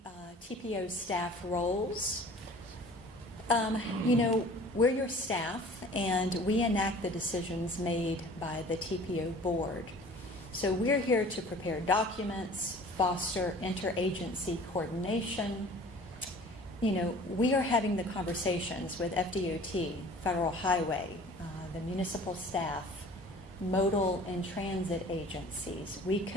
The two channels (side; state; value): both; normal; correlation 0.46